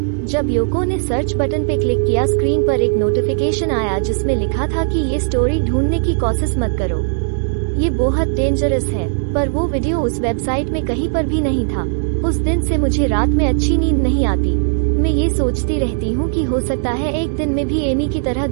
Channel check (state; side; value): silent; left; digital silence